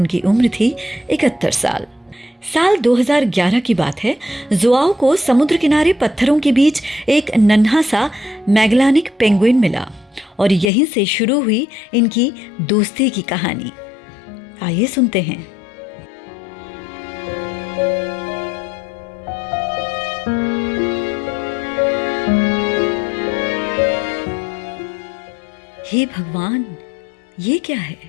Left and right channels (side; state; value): right; drops out; at 10.7 s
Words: उम्र थी 71 साल। साल 2011 की बात है। जोआओ को समुद्र किनारे पत्थरों के बीच एक नन्हा सा मैगेलानिक पेंगुइन मिला और यहीं से शुरू हुई इनकी दोस्ती की कहानी। आइए सुनते हैं। हे भगवान, ये क्या है?